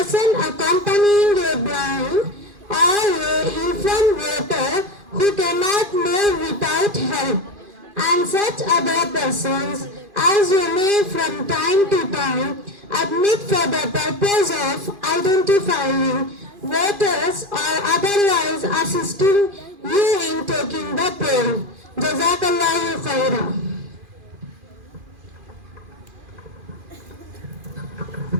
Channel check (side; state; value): left; late; 2.4 ms